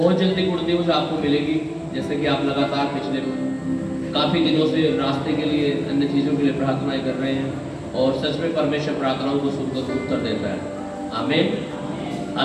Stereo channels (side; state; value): both; identical; correlation 1.00